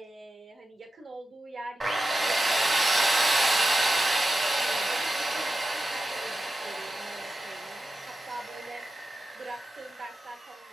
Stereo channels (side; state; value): both; normal; correlation 0.92